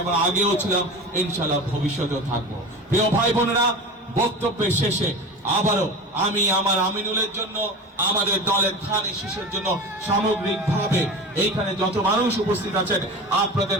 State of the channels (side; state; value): both; normal; correlation 0.31